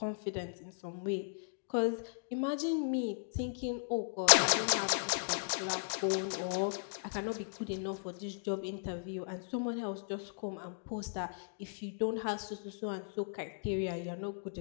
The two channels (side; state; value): right; silent; digital silence